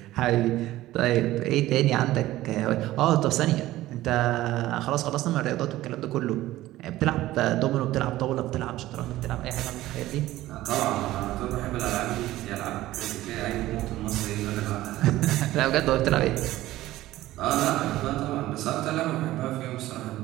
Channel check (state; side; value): quieter; left; 15.8 dB